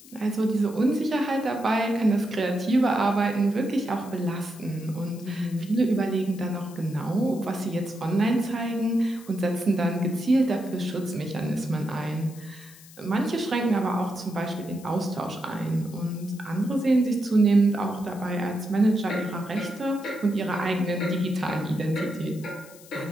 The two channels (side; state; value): left; noise; hiss, 21 dB below the sound